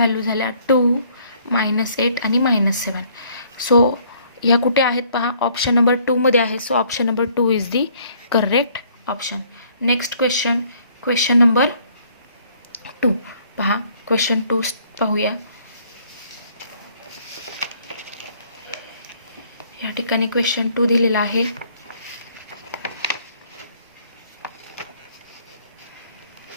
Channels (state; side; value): inverted; both; correlation -0.62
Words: झाल्या 2, -8 आणि -7. सो ह्या कुठे आहेत पहा, ऑप्शन नंबर 2 मध्ये आहे. So option number 2 is the correct option. Next question number 2. पहा, क्वेश्चन 2 पाहूया. या ठिकाणी क्वेश्चन 2 दिलेला आहे.